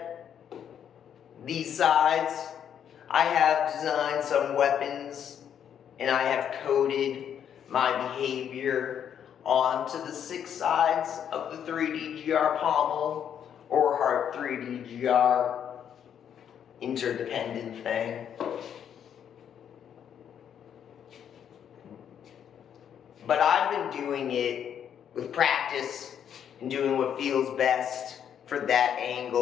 these sides. I have designed some weapons, and I have coded my behavior onto the 6 sides of the 3DGR pommel, or Heart 3DGR interdependent thing. But I've been doing it with practice and doing what feels best for that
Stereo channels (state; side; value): quieter; right; 8.8 dB